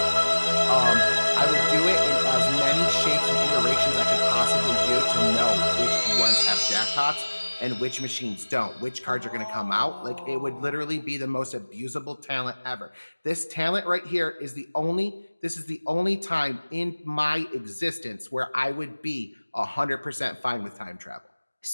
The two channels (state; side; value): inverted; both; correlation -1.00